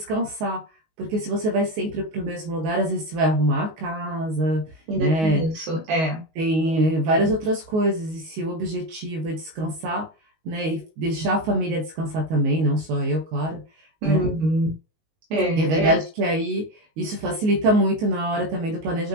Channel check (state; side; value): late; left; 19 ms